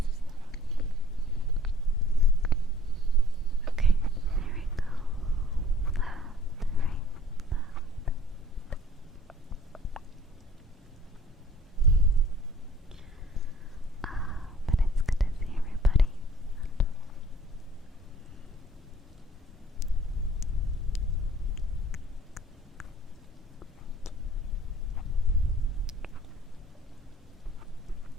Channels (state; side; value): normal; both; correlation 0.54